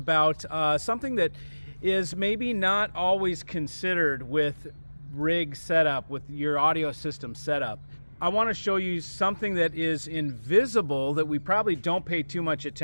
something that is maybe not always considered with rig setup, with your audio system setup. I want to show you something that is invisible that we probably don't pay too much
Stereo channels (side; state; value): both; inverted; correlation -1.00